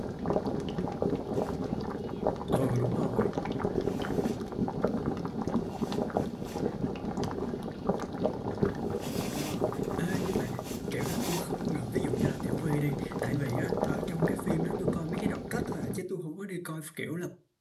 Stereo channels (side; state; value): both; identical; correlation 1.00